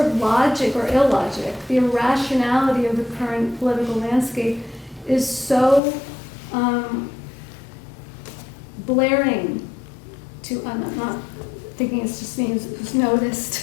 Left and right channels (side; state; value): right; drops out; at 5.8 s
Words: of logic or illogic, the irrationality of the current political landscape is so blaring to, I'm not thinking it's just me who's